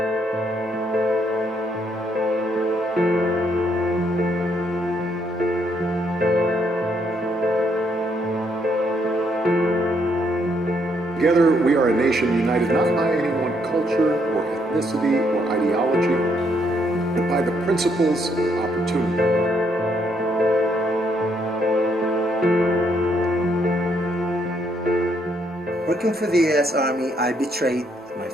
Together, we are a nation united not by any one culture or ethnicity or ideology, but by the principles of opportunity. Working for the U.S. Army, I betrayed my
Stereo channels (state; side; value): normal; both; correlation 0.72